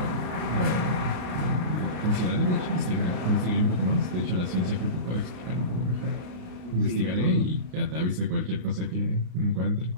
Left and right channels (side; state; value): left; late; 33 ms